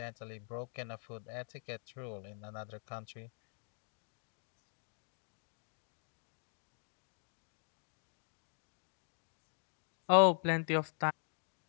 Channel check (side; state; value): right; silent; digital silence